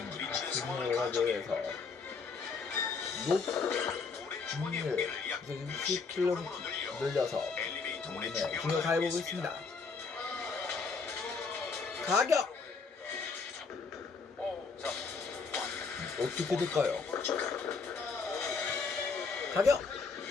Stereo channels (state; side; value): quieter; right; 4.8 dB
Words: 부딪히는 상황을 진행을 하기 위해서 가정해 물의 주머니의 무게를 약 60kg 60kg으로 늘려서 엘리베이터 문에 중요 충격을 가해보고 있습니다. 가격! 어떻게 될까요? 가격!